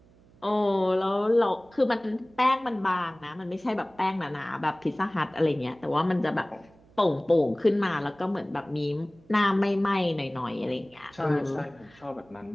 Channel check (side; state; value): right; noise; hum, 28 dB below the sound